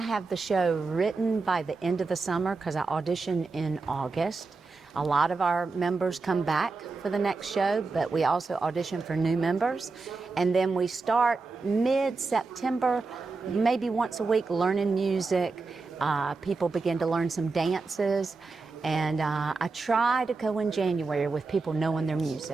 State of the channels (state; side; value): quieter; left; 4.0 dB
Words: the show written by the end of the summer because I audition in August. A lot of our members come back for the next show, but we also audition for new members. And then we start mid-September, maybe once a week, learning music. People begin to learn some dances. And I try to go in January with people knowing their